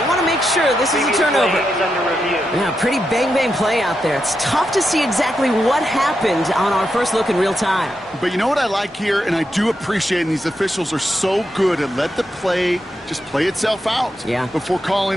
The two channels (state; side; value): normal; both; correlation 0.85